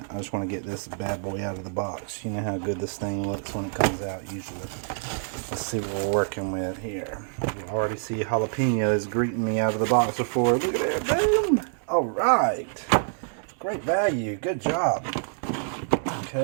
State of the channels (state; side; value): silent; left; digital silence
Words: I just want to get this bad boy out of the box. You know how good this thing looks when it comes out usually. Let's see what we're working with here. You already see jalapenos greeting me out of the box before. Look at that, boom! All right. Great value, good job.